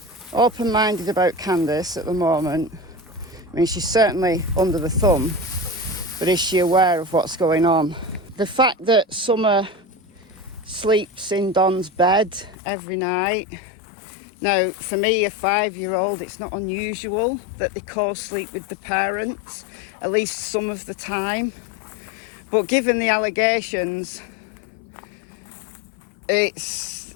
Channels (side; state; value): right; drops out; at 12.6 s